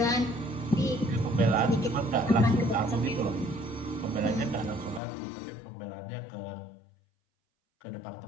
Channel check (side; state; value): right; drops out; at 5.0 s